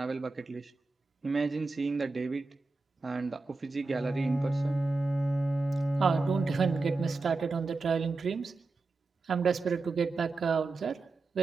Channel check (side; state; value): left; quieter; 3.7 dB